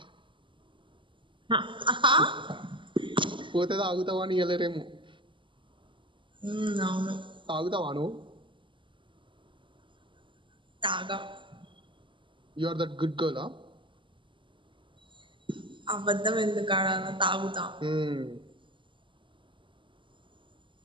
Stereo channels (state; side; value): late; left; 0.24 ms